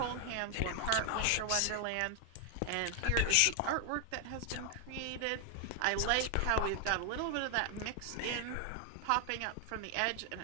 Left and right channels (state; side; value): different; both; correlation 0.00